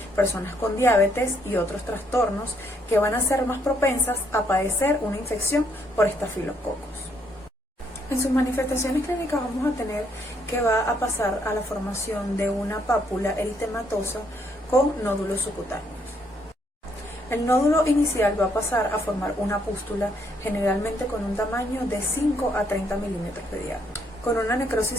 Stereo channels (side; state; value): both; normal; correlation 0.71